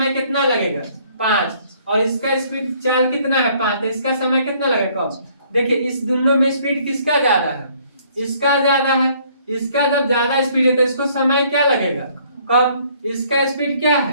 कितना लगेगा, 5, और इसका स्पीड चाल कितना है, 5, तो इसका समय कितना लगेगा, कम। देखिए इस दोनों में स्पीड किसका ज्यादा है, इसका ज्यादा है। इसका जब ज्यादा स्पीड है तो इसको समय क्या लगेगा, कम। इसका स्पीड क्या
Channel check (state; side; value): inverted; both; correlation -0.62